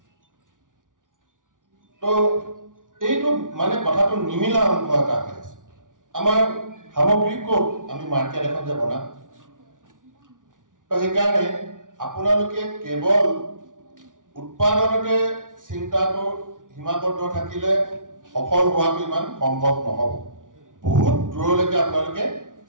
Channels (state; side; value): late; left; 0.88 ms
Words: তো এইটো মানে কথাটো নিমিলা অংশ এটা হৈ আছে আমাৰ সামগ্ৰী ক'ত আমি মাৰ্কেট এখন যে বনাম তো সেইকাৰণে আপোনালোকে কেৱল উৎপাদনতে চিন্তাটো সীমাবদ্ধ থাকিলে সফল হোৱাটো ইমান সম্ভৱ নহ'ব বহুত দূৰলৈকে আপোনালোকে